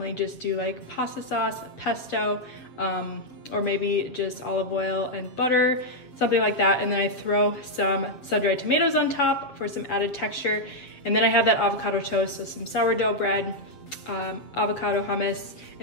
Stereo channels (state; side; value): late; right; 7.8 ms